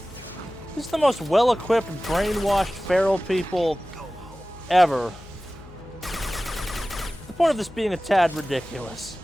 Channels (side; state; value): left; noise; hum, 20 dB below the sound